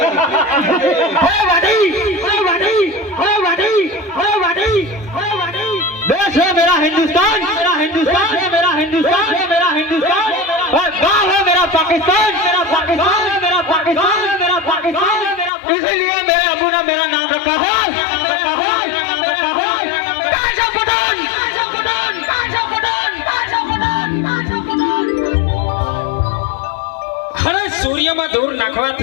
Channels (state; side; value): drops out; right; at 15.5 s